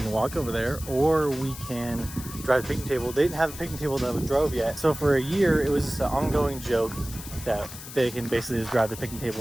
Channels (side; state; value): left; noise; hiss, 13 dB below the sound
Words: can walk over there or we can drive the picnic table. They didn't have a picnic table that we drove yet. So for a year, it was just an ongoing joke that they can basically just grab the picnic